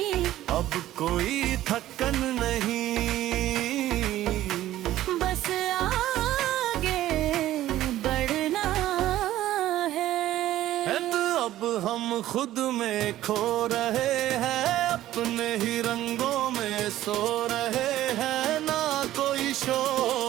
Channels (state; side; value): quieter; left; 14.0 dB